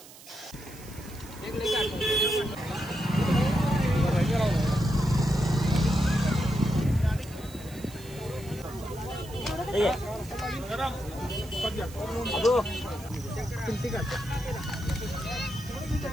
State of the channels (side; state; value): right; noise; hiss, 19 dB below the sound